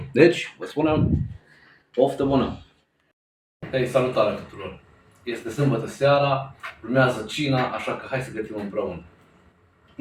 Deci, vă spunem, poftă bună! Hei, salutare tuturor! Este sâmbătă seara, urmează cina, așa că hai să gătim împreună.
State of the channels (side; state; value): both; identical; correlation 1.00